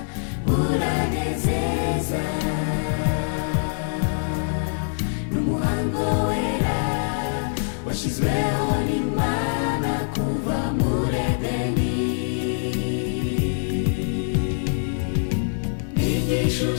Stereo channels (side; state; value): right; silent; digital silence